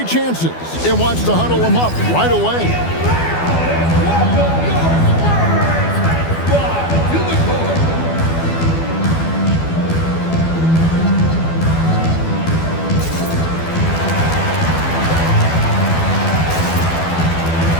chances and wants to huddle him up right away.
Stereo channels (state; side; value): late; right; 12 ms